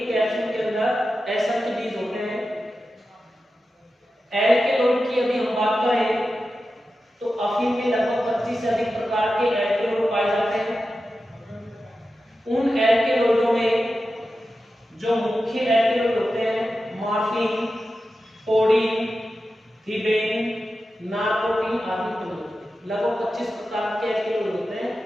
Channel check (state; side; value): normal; both; correlation 0.92